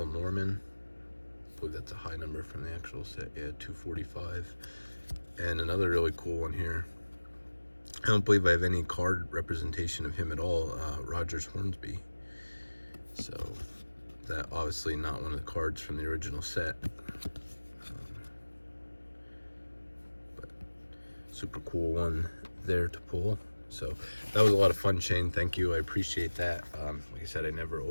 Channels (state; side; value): inverted; both; correlation -1.00